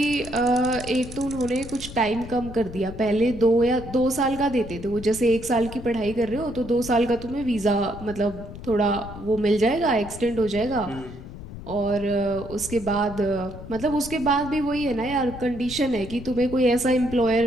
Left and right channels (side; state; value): left; noise; rumble, 13 dB below the sound